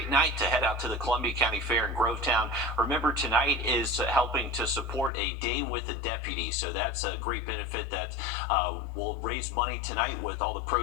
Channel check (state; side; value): drops out; right; at 5.1 s